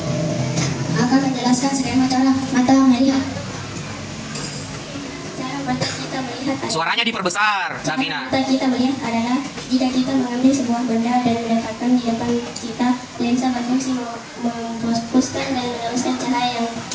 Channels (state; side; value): identical; both; correlation 1.00